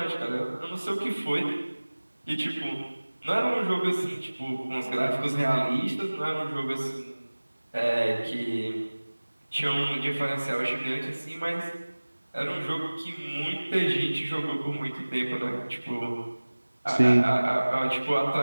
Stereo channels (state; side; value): inverted; both; correlation -1.00